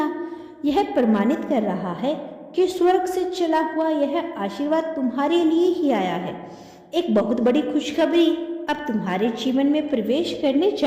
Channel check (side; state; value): both; identical; correlation 1.00